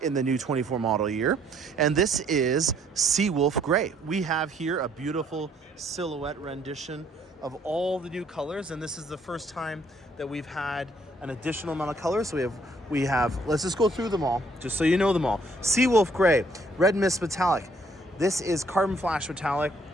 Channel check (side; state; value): both; normal; correlation 0.65